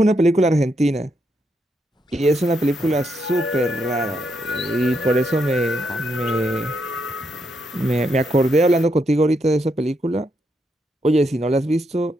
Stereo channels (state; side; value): normal; both; correlation 0.79